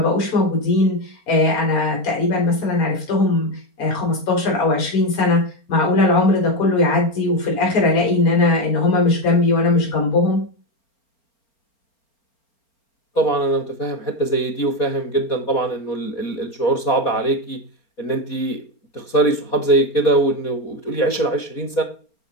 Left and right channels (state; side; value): late; right; 4.4 ms